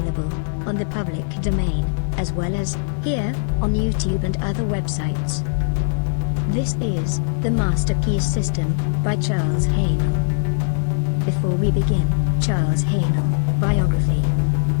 on the public domain, as well as here on YouTube and other websites. This is The Master Key System by Charles Haanel. Before we begin, Charles Haanel, biography.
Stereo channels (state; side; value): silent; right; 61 dB below the other